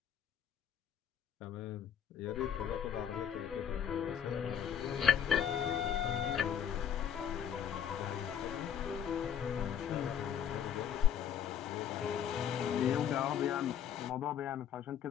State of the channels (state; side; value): quieter; right; 8.9 dB